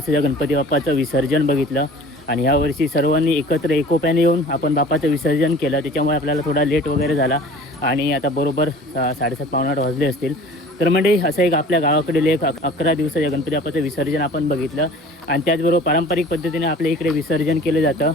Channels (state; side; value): normal; both; correlation 0.45